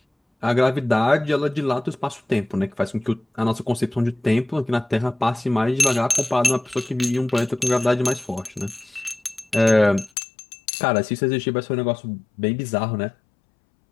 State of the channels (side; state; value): right; drops out; at 10.1 s